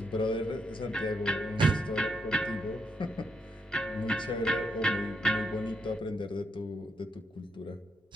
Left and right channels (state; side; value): normal; both; correlation 0.79